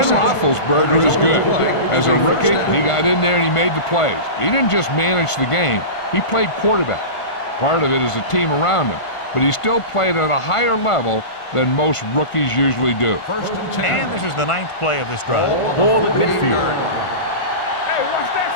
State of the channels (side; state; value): right; late; 1.5 ms